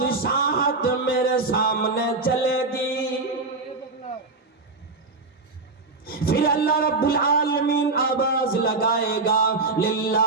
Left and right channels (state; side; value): quieter; left; 3.6 dB